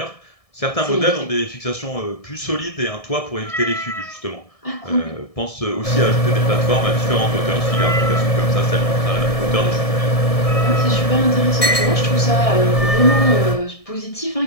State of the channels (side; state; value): right; late; 1.7 ms